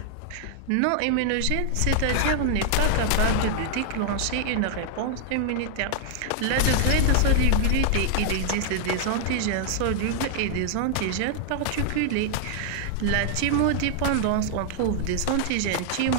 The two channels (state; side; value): different; both; correlation 0.00